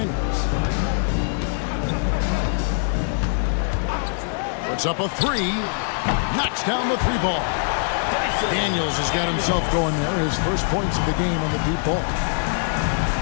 Puts up a 3. Knocks down the 3 ball. Daniels has got himself going there. His first points of the game on the deep ball.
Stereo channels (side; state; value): right; silent; digital silence